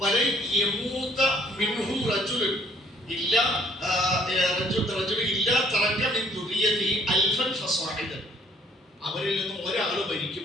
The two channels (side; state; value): both; normal; correlation 0.61